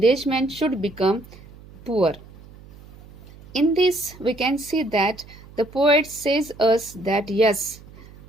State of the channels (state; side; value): noise; right; hum, 21 dB below the sound